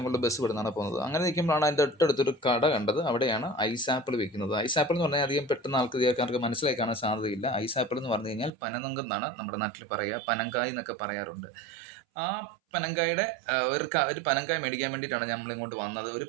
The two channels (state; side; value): drops out; left; at 8.5 s